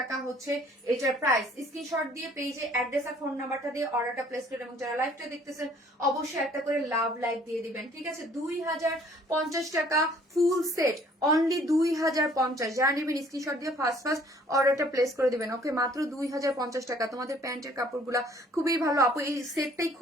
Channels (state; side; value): normal; both; correlation 0.58